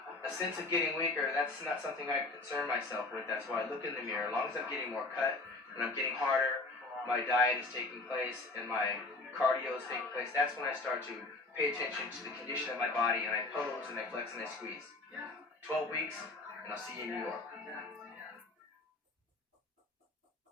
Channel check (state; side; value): quieter; right; 3.3 dB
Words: a sense of getting weaker, that's not something I concern myself with. That's why I look in the mirror. As long as I'm getting more cut and I'm getting harder, my diet is taking place and my cardio is taking place, that's when I start to pay attention to the condition of my body, and I pose and I flex and I squeeze. 12 weeks, and I'll see you in New York.